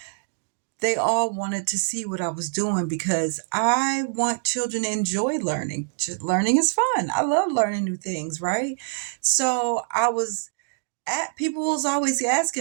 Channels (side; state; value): left; silent; digital silence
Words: they all wanted to see what I was doing, because I want children to enjoy learning. Learning is fun. I love learning new things, right? So people was always